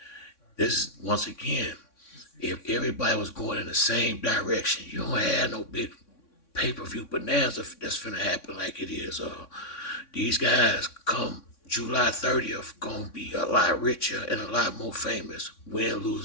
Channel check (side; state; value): right; late; 3.6 ms